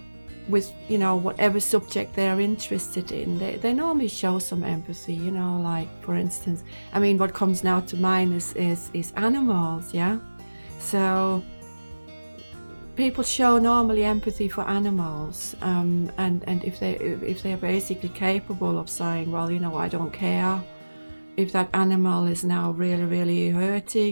with, whatever subject they're interested in, they normally show some empathy, like for instance, what comes now to mind is animals, yeah? So people show normally empathy for animals, and if they're basically capable of saying, well, I don't care if that animal is now really, really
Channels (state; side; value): inverted; both; correlation -1.00